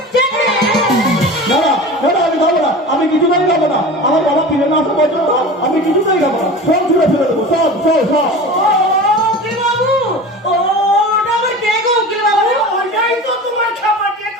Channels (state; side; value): normal; both; correlation 0.34